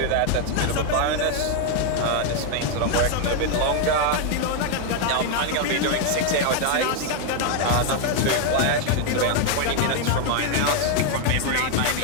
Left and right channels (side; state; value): both; different; correlation 0.01